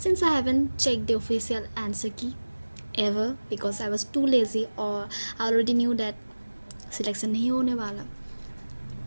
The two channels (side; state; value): both; inverted; correlation -1.00